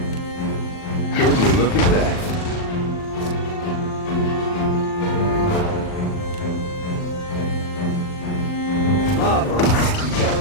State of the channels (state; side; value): late; right; 39 ms